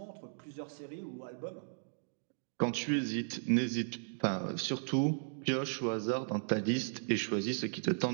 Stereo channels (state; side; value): silent; left; digital silence